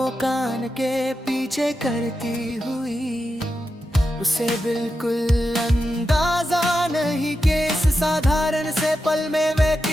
कान के पीछे करती हुई। उसे बिल्कुल अंदाजा नहीं कि इस साधारण से पल में वे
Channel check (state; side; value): normal; both; correlation 0.89